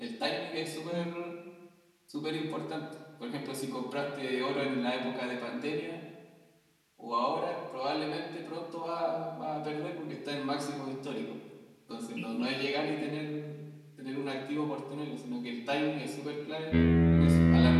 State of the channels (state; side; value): identical; both; correlation 1.00